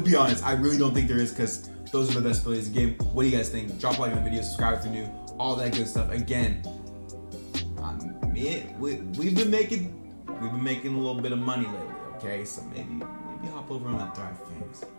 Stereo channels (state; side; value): inverted; both; correlation -1.00